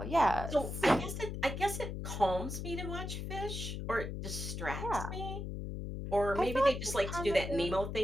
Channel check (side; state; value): left; noise; hum, 5 dB below the sound